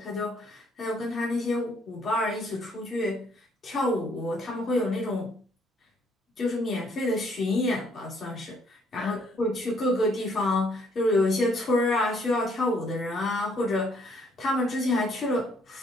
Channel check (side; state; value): both; normal; correlation 0.66